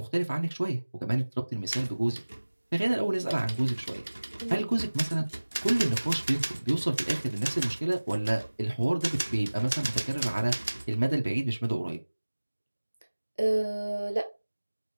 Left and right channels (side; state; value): both; inverted; correlation -1.00